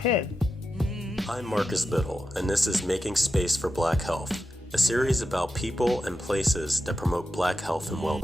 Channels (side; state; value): both; normal; correlation 0.89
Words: I'm Marcus Biddle, and this is Making Space for Black Health, a series about people and places that promote Black health and